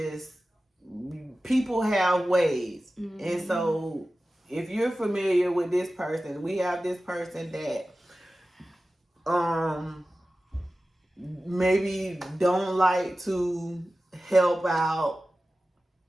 people have ways, and so if you're familiar with this person, we have this person that maybe don't like to help out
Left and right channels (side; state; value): both; normal; correlation 0.95